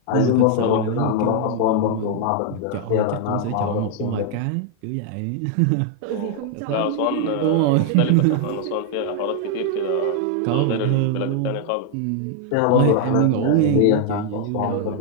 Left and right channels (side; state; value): both; different; correlation 0.00